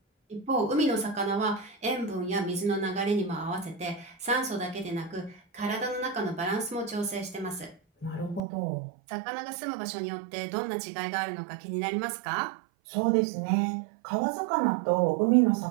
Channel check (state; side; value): drops out; left; at 8.4 s